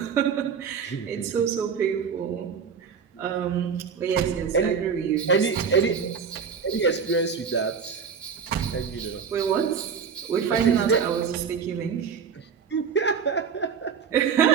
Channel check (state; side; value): quieter; left; 6.5 dB